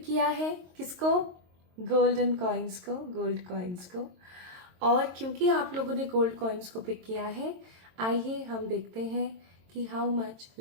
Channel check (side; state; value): left; late; 22 ms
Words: किया है किसको? गोल्डन कॉइन्स को, गोल्ड कॉइन्स को। और क्योंकि आप लोगों ने गोल्ड कॉइन्स को पिक किया है, आइए हम देखते हैं कि how much